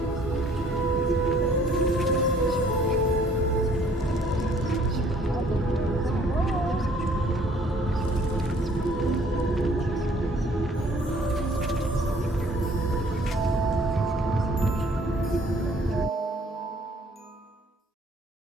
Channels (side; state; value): both; normal; correlation 0.58